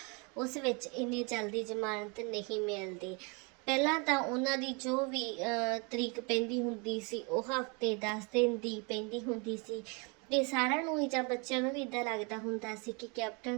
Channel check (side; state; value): left; quieter; 31.9 dB